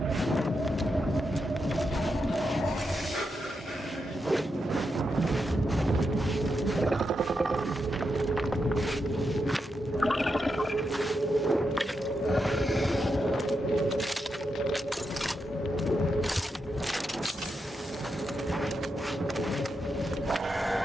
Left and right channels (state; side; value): normal; both; correlation 0.85